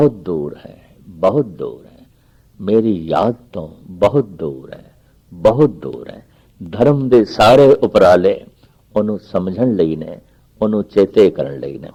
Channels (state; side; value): identical; both; correlation 1.00